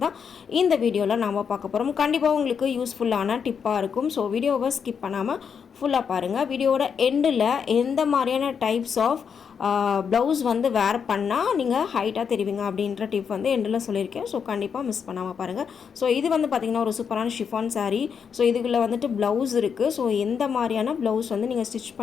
தான் இந்த வீடியோவில் நாம் பார்க்க போகிறோம். கண்டிப்பாக உங்களுக்கு யூஸ்ஃபுல்லான டிப்பாக இருக்கும். ஸோ வீடியோவை ஸ்கிப் பண்ணாமல் ஃபுல்லாக பாருங்கள். வீடியோவோட எண்டில் எந்த மாதிரியான டைப்ஸ் ஆஃப் ப்ளவுஸ் வந்து வேர் பண்ணால் நீங்கள் ஹைட்டாக தெரிவிங்க அப்படின்ற டிப் வந்து எண்டில் சொல்லியிருக்கேன். ஸோ கண்டிப்பாக மிஸ் பண்ணாமல் பாருங்கள். ஸோ இது வந்து பார்த்திங்கன்னா ஒரு சூப்பரான ஷிஃபான் சாரீ. ஸோ இதுக்குள்ளே வந்துட்டு ப்ளவுஸ் இருக்குது. ஸோ எந்த மாதிரியான ப்ளவுஸ் வந்து நீங்கள் ஸ்டிச்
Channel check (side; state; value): right; quieter; 6.8 dB